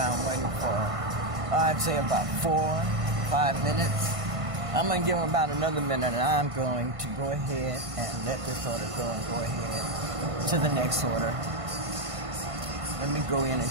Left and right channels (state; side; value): late; left; 1.5 ms